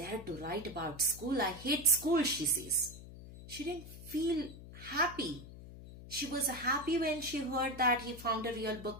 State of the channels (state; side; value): noise; left; hum, 15 dB below the sound